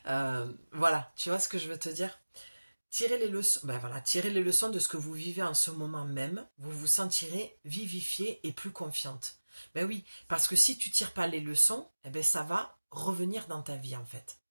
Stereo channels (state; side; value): inverted; both; correlation -1.00